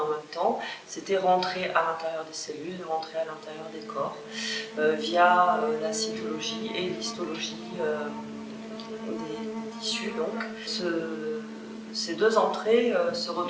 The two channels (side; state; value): both; identical; correlation 1.00